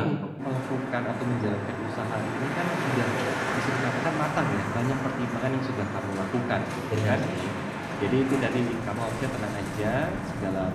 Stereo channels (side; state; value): both; identical; correlation 1.00